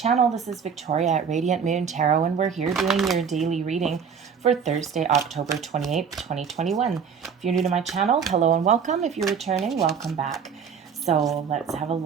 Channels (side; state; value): left; quieter; 6.7 dB